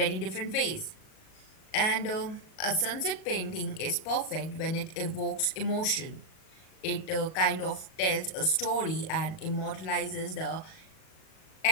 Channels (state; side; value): late; right; 38 ms